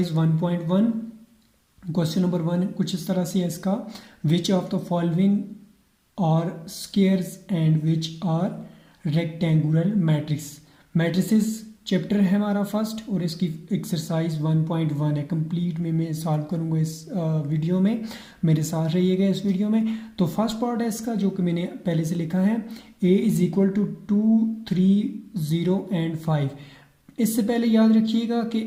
1.1 क्वेश्चन नंबर 1 कुछ इस तरह से है इसका। Which of the following are squares and which are rectangular matrix. Matrices chapter है हमारा फर्स्ट, और इसकी एक्सरसाइज 1.1 है। कंप्लीट में मैं सॉल्व करूँगा इस वीडियो में, मेरे साथ रहिएगा इस वीडियो में। तो फर्स्ट पार्ट है इसका, जो कि मैंने पहले से लिखा है, a is equal to 2, 3, 0 and 5। इससे पहले याद रखिएगा कि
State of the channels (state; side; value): identical; both; correlation 1.00